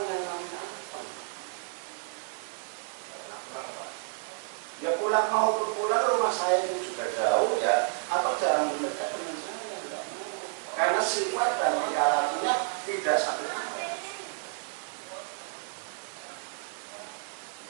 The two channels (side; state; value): left; silent; 57 dB below the other